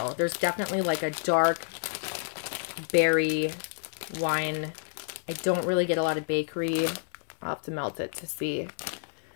There's definitely like a dark berry wine. I don't really get a lot of bakery. I'll have to melt it to see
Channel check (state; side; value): silent; right; digital silence